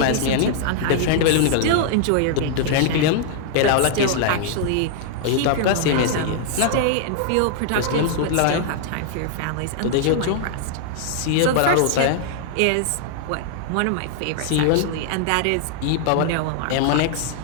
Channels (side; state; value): both; different; correlation -0.01